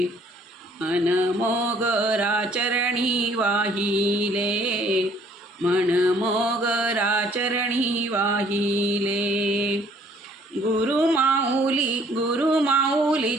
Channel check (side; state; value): both; normal; correlation 0.60